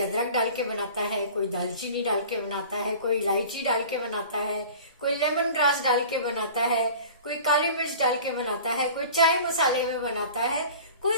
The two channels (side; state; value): both; inverted; correlation -0.41